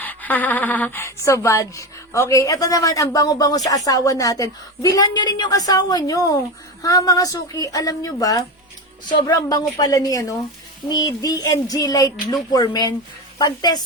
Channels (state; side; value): normal; both; correlation 0.20